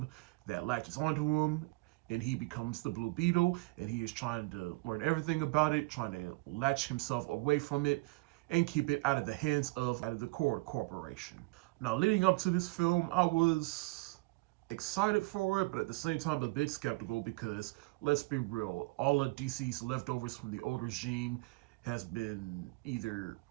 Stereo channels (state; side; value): quieter; left; 24.8 dB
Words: that latches onto him, and he becomes the Blue Beetle, and he is trying to learn everything about it, trying to latch himself away from it, and keep it out of the hands of the Cord Corporation. Now, leading up to this film, I was excited for it, but at the same time a bit skeptical, because let's be real, all of DC's leftovers from the old regime has been either